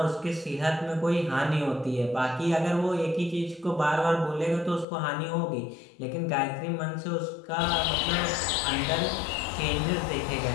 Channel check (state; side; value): drops out; right; at 4.9 s